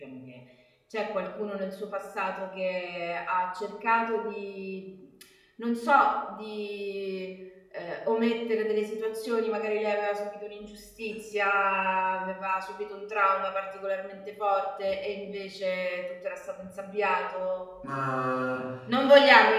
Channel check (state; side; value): identical; both; correlation 1.00